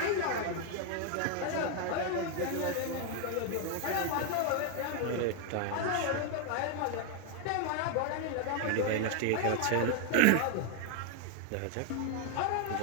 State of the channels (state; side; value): different; both; correlation 0.01